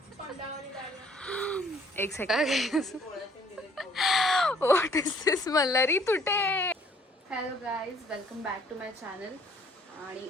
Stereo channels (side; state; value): both; normal; correlation 0.59